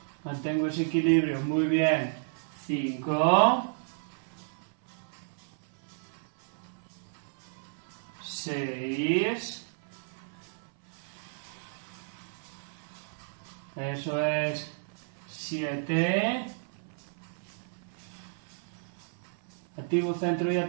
mantengo ese equilibrio, muy bien, 5, 6, eso es, 7, activo centro y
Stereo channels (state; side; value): silent; left; 56 dB below the other